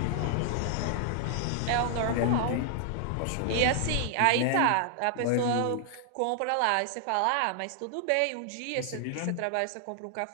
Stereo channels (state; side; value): different; both; correlation 0.00